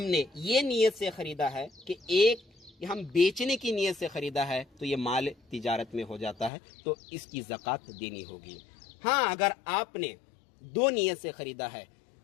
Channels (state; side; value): drops out; right; at 6.5 s